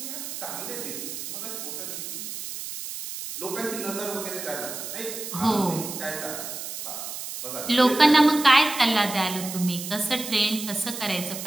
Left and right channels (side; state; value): right; noise; hiss, 8 dB below the sound